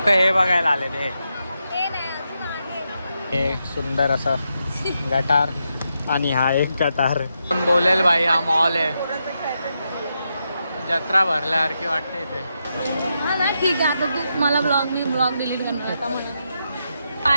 हे बघायला आले ते हे सुंदर असं गटार आणि हा एक गटार. पण बोलेल भाई हा मॉल आहे. जत्रा भरल्यासारखी वाटते इथे. हा ना ठीक आहे. आता तू मला ब्लॉग डिलीट करणार आता म्हणा.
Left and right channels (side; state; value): both; inverted; correlation -0.84